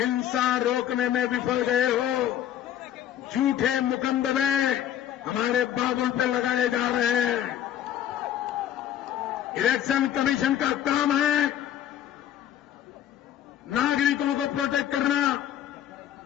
रोकने में विफल गए हो, झूठे मुकदमे हमारे बाबुल पे लगाए जा रहे हैं। इलेक्शन कमीशन का काम है नागरिकों को प्रोटेक्ट करना।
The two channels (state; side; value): quieter; right; 10.8 dB